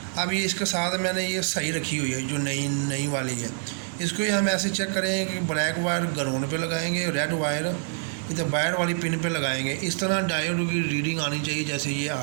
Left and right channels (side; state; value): left; silent; digital silence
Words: अब ये इसके साथ मैंने ये सही रखी हुई है जो नई वाली है। इसको ही हम ऐसे चेक करेंगे कि ब्लैक वायर ग्राउंड पे लगाएंगे, रेड वायर इधर वायर वाली पिन पे लगाएंगे। इस तरह डायोड की रीडिंग आनी चाहिए जैसे ये